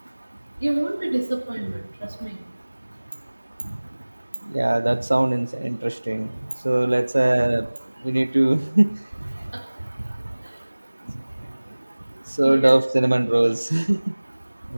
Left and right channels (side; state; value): both; inverted; correlation -1.00